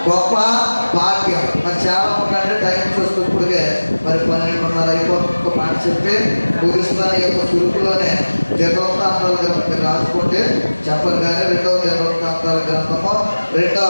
గొప్ప భాగ్యం. మరి చాలా ఉందంటే టైం చూస్తూ ఇప్పుడుగే మరి 12:30 అయిపోతుంది. మాట చెప్పి ముగిస్తాను. ఈ యొక్క సురుకులోనే దినవృత్తాంతాల గ్రంథం రాసుకుంటే చెప్పను కానీ 2వ దినవృత్తాంతాల గ్రంథము 2వ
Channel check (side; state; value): both; inverted; correlation -1.00